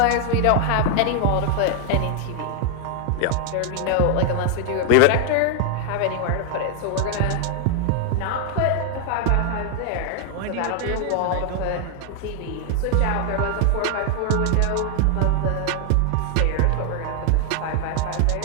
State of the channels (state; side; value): different; both; correlation 0.00